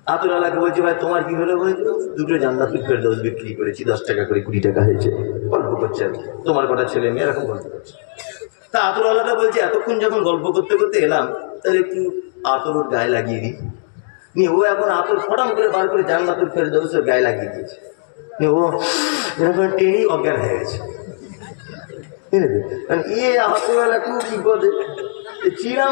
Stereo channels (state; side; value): silent; right; digital silence